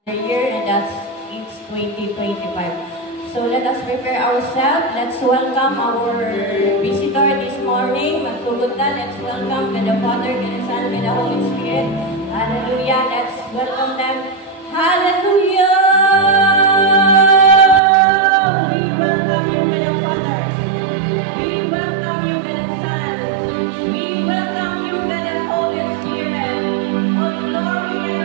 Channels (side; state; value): left; drops out; at 17.8 s